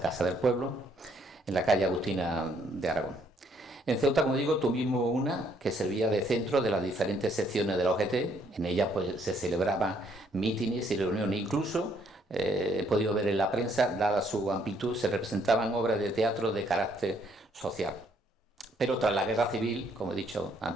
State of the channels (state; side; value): normal; both; correlation 0.68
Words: del Pueblo, en la calle Agustina de Aragón. En Ceuta, como digo, tuvimos una que servía de centro de las diferentes secciones de la OGT. En ella pues, se celebraban mítines y reuniones. Incluso, he podido ver en la prensa, dada su amplitud, se representaban obras de teatro de carácter social. Pero tras la guerra civil, como he dicho